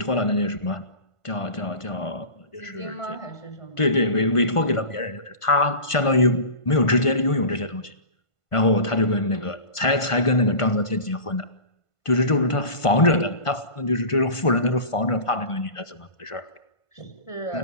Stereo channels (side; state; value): right; late; 1.5 ms